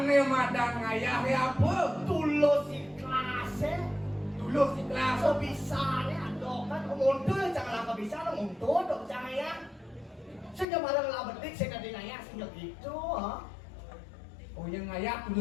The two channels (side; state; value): right; drops out; at 10.7 s